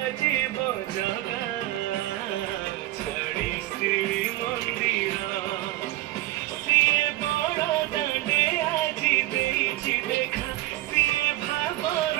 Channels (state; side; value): quieter; left; 16.7 dB